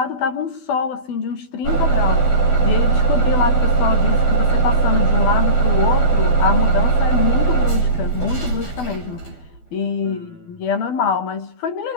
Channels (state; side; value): late; right; 12 ms